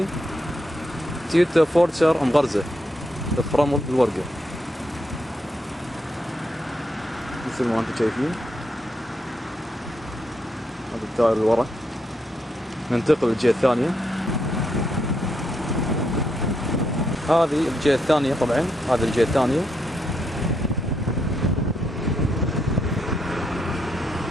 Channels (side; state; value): both; normal; correlation 0.79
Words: تويوتا فورتشر مغرزة فرمل الورقة مثل ما انتم شايفين. هذا التاير اللي ورا. ننتقل للجهة الثانية. هذه الجهة الثانية. طبعا هذه الجهة الثانية.